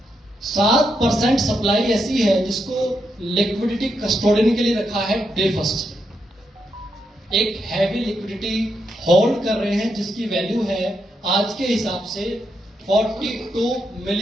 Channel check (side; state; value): both; normal; correlation 0.82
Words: 7% सप्लाई ऐसी है जिसको लिक्विडिटी कस्टोडियन के लिए रखा है डे फर्स्ट। एक हैवी लिक्विडिटी होल्ड कर रहे हैं जिसकी वैल्यू है आज के हिसाब से $42